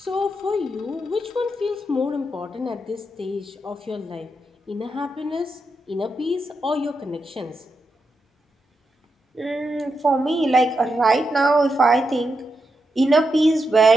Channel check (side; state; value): both; normal; correlation 0.85